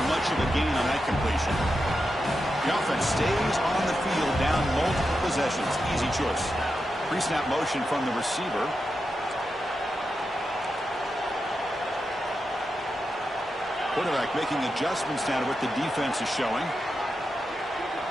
much of a gain on that completion. The offense stays on the field down multiple possessions. Easy choice. Pre-snap motion from the receiver. Quarterback making adjustments now to what the defense is showing.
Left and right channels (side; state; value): both; normal; correlation 0.88